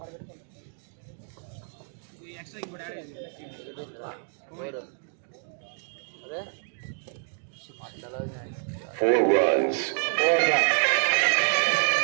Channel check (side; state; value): left; silent; digital silence